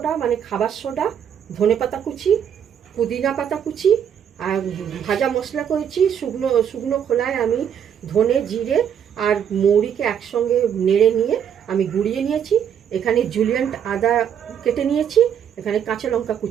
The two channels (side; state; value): left; quieter; 8.5 dB